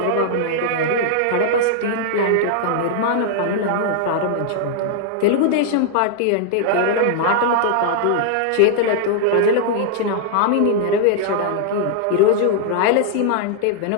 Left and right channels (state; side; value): different; both; correlation -0.01